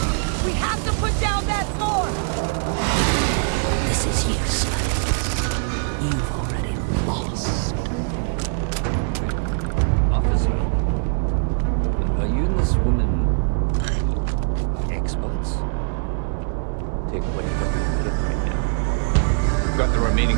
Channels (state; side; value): silent; left; digital silence